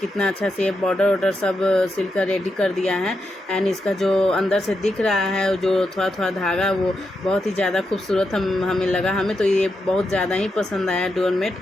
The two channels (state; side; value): normal; both; correlation 0.85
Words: अच्छा से बॉर्डर वॉर्डर सब सिलकर रेडी कर दिया है। एंड इसका जो अंदर से दिख रहा है जो थोड़ा थोड़ा धागा, वो बहुत ही ज़्यादा खूबसूरत हमें लगा। हमें तो ये बहुत ज़्यादा ही पसंद आया डोरमेट।